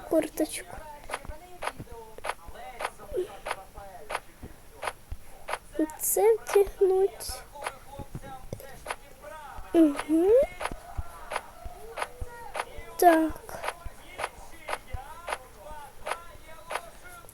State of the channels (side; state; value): both; identical; correlation 1.00